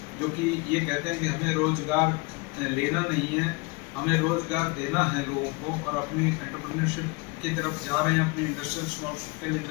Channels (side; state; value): right; quieter; 27.5 dB